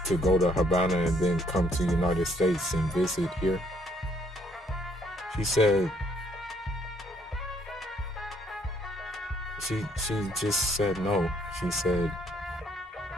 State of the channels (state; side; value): normal; both; correlation 0.67